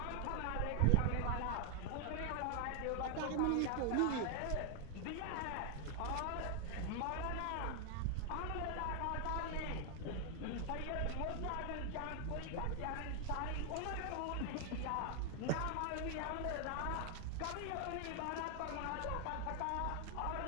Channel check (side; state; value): both; different; correlation 0.00